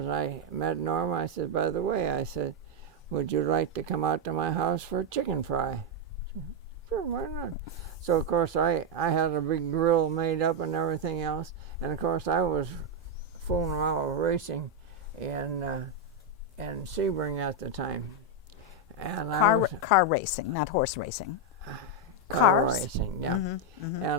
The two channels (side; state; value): both; normal; correlation 0.01